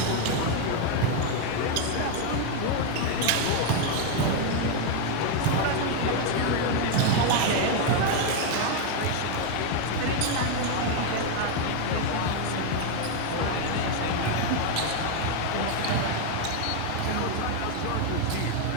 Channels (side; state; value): both; different; correlation 0.01